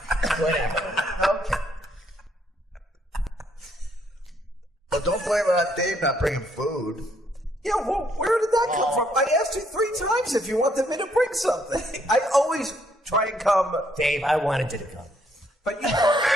Whatever. Okay. Well, don't blame it on Dave not bringing food. Yeah, well, where did that come from? I asked you 3 times if you wanted me to bring something. I always try and come, Dave, I wanted you to come. but you know...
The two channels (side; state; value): both; normal; correlation 0.70